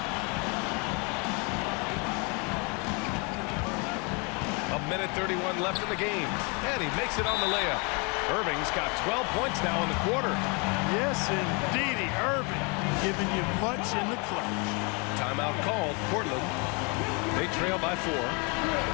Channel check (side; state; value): right; quieter; 31.8 dB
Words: A minute 31 left in the game. And he makes it on the layup. Irving's got 12 points now in the quarter. Yes, indeedy. Irving giving you much in the clutch. Timeout called. Portland. They trail by 4.